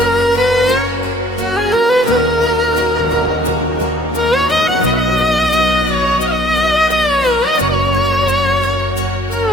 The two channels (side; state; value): both; normal; correlation 0.56